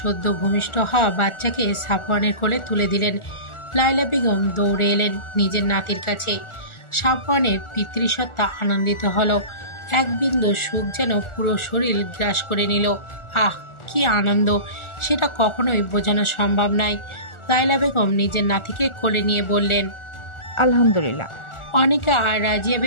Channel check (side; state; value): right; late; 1.4 ms